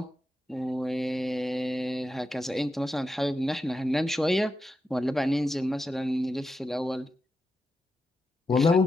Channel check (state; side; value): normal; both; correlation 0.88